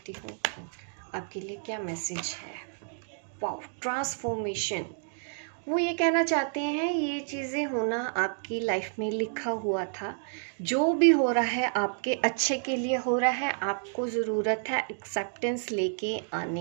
हूँ आपके लिए क्या मैसेज है। वाओ, ट्रांसफॉर्मेशन, वो ये कहना चाहते हैं ये चीज़ें होना आपकी लाइफ में लिखा हुआ था, जो भी हो रहा है आपके अच्छे के लिए हो रहा है, आपको ज़रूरत है एक्सेप्टेंस लेके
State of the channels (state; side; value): silent; left; digital silence